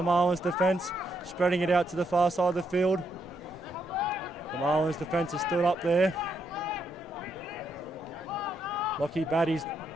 Marlins defence. Spreading it out to the far side of the field. The Marlins defence is still up there. Lockie Batty's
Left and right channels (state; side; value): normal; both; correlation 0.78